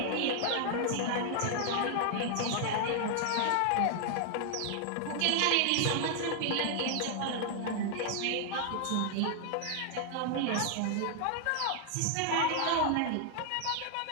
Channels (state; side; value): different; both; correlation 0.00